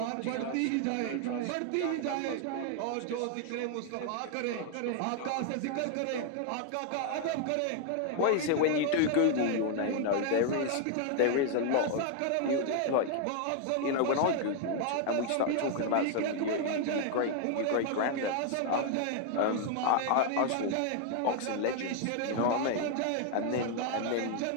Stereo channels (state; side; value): different; both; correlation 0.00